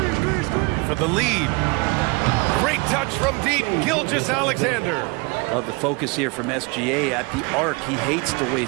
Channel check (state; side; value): quieter; left; 27.8 dB